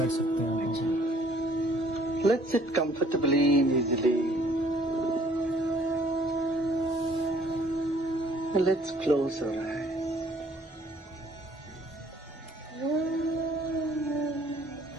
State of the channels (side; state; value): both; normal; correlation 0.59